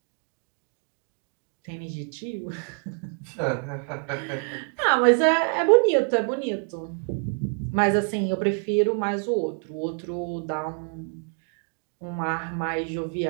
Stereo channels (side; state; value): left; quieter; 38.5 dB